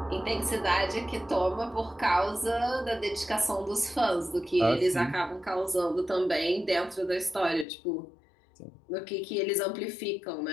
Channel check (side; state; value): right; drops out; at 7.7 s